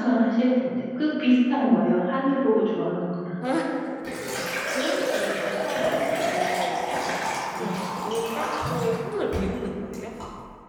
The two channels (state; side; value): identical; both; correlation 1.00